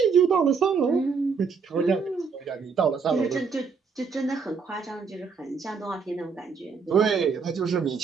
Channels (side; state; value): left; quieter; 5.4 dB